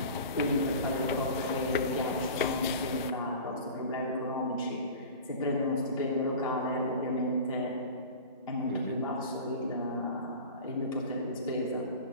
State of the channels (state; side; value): inverted; both; correlation -0.36